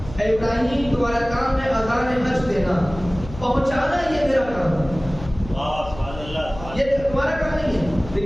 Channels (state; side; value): noise; left; hum, 14 dB below the sound